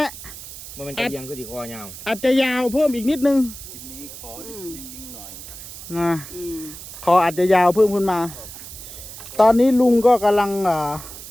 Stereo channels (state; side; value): noise; right; hiss, 13 dB below the sound